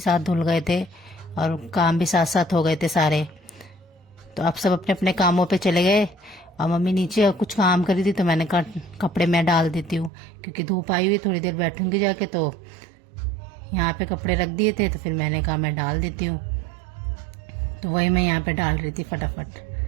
धुल गए थे और काम भी साथ साथ हो गए थे सारे। तो आप सब अपने अपने कामों पे चले गए और मम्मी नीचे कुछ काम करी थी, तो मैंने कहा कपड़े मैं डाल देती हूँ, क्योंकि धूप आई हुई, थोड़ी देर बैठूंगी जाके। तो यहाँ पे कपड़े रख दिए थे, तो फिर मैंने कहा मैं डाल देती हूँ। तो वही मैं यहाँ पे डाल रही थी फटाफट,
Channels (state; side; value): drops out; left; at 10.1 s